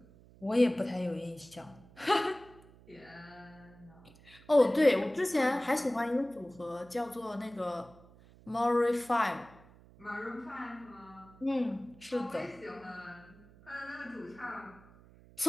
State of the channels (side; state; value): right; noise; hum, 24 dB below the sound